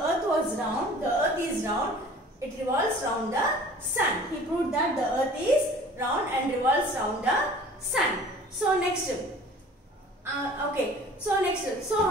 was round. The earth is round. It revolves round the sun. He proved that the earth is round and revolves round the sun. So next.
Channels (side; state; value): both; normal; correlation 0.47